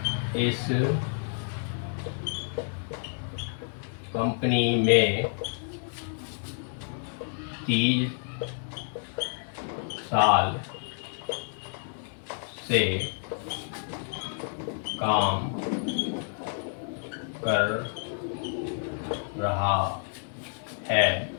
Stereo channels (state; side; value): silent; right; 58 dB below the other